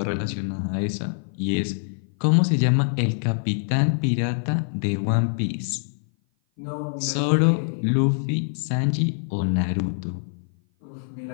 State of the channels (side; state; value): right; silent; 56 dB below the other